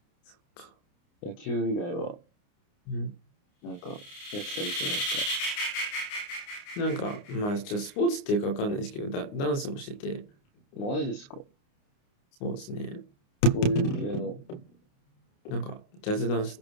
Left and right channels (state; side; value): late; right; 29 ms